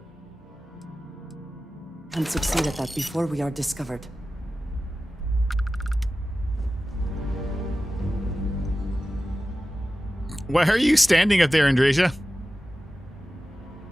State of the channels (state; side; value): normal; both; correlation 0.95